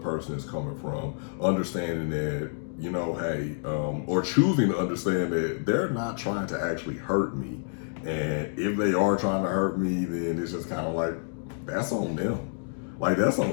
is coming from, understanding that, hey, or choosing to understand that they're not trying to actually hurt me. And if they are trying to hurt me, then it's just kind of like, that's on them. Like, that's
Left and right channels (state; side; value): silent; right; digital silence